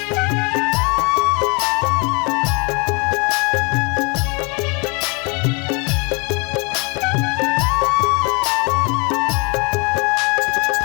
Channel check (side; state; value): right; quieter; 31.3 dB